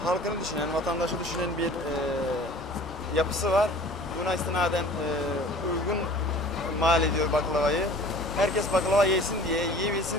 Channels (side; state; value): both; normal; correlation 0.45